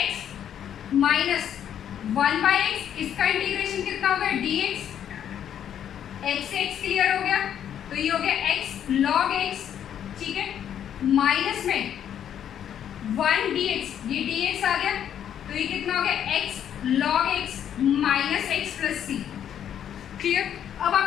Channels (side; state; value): right; quieter; 9.6 dB